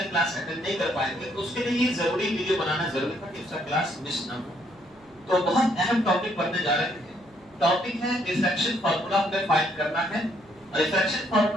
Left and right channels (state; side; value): noise; right; hum, 30 dB below the sound